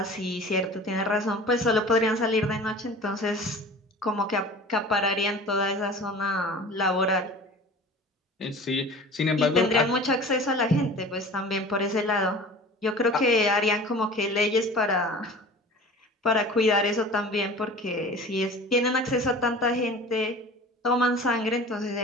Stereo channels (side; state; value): both; normal; correlation 0.40